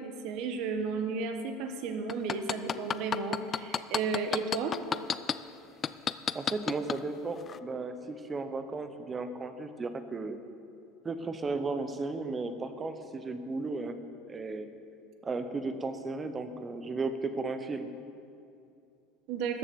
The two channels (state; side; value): normal; both; correlation 0.58